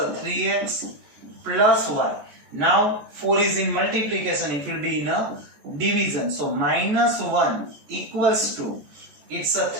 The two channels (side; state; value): left; late; 14 ms